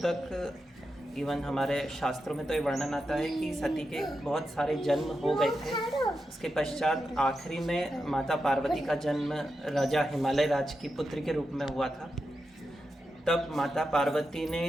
इवन हमारे शास्त्रों में तो ये वर्णन आता है कि सती के बहुत सारे जन्म हो गए थे। उसके पश्चात आखिरी में माता पार्वती का जन्म राजा हिमालय राज की पुत्री के रूप में हुआ था। तब माता पार्वती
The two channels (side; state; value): both; normal; correlation 0.88